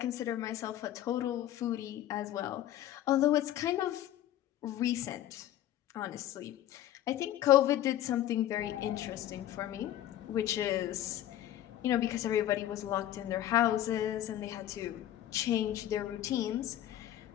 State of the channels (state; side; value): quieter; right; 12.6 dB